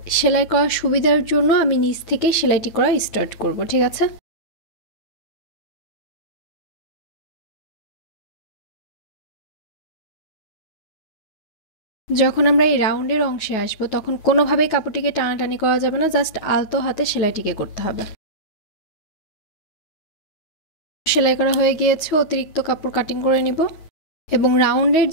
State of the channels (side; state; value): right; late; 9.4 ms